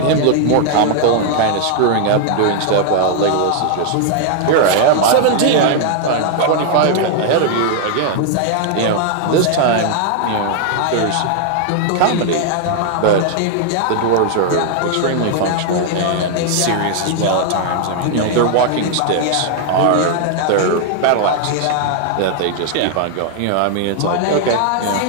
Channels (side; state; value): both; different; correlation 0.00